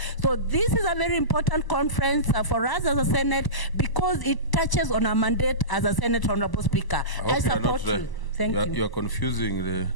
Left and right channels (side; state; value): right; late; 1.0 ms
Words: So this is a very important conference for us as a Senate because it touches on our mandate as a Senate, Honorable Speaker. I support you. Thank you. You are confusing the